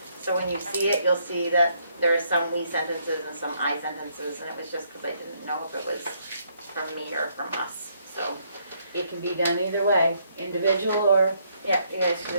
So when you see it, you'll see that there are some we sentences and some I sentences, and it was just because I didn't know if it was from me or from us. So It can be done either way, individual or... yeah, you guys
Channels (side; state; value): both; inverted; correlation -0.71